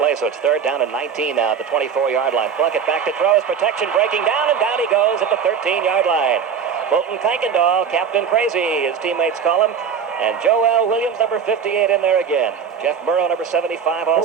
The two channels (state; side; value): quieter; left; 6.9 dB